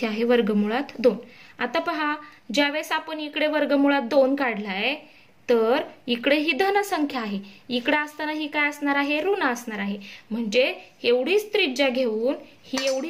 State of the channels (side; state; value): both; identical; correlation 1.00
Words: आहे √2. आता पहा ज्यावेळेस आपण इकडे √2 काढलाय तर इकडे ही धन संख्या आहे, इकडे असताना ही काय असणार आहे? ऋण असणार आहे. म्हणजे एवढीच त्रिज्या घेऊन, ही